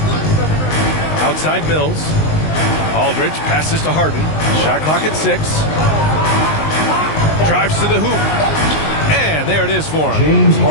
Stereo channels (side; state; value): right; late; 19 ms